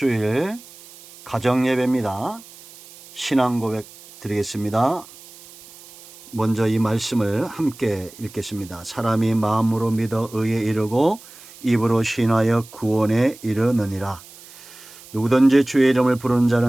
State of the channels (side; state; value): right; noise; hiss, 20 dB below the sound